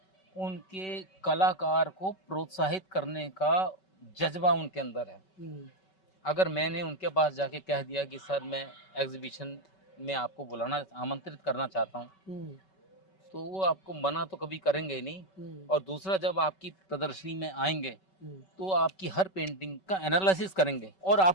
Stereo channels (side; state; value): right; late; 5.3 ms